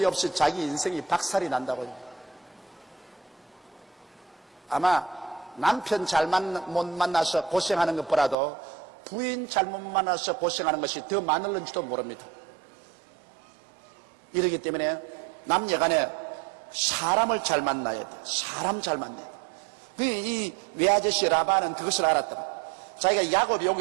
없이 자기 인생이 박살이 난다고요. 아마 남편 못 만나서 고생하는 것보다도 부인 잘못 만나서 고생하는 것이 더 많을는지도 모릅니다. 이러기 때문에 남녀간에 사람을 잘 만나야 돼. 사람 잘 만나야 돼. 이 외아저씨 라반은 그것을 알았다. 자기가 야곱이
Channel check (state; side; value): drops out; left; at 8.3 s